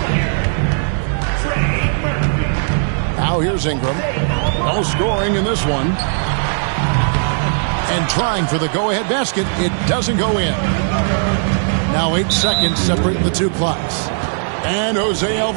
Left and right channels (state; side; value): silent; left; 68 dB below the other